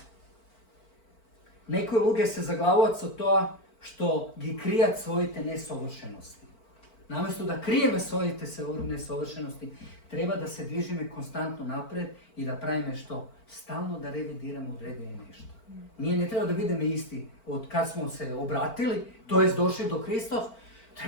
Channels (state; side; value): late; right; 4.5 ms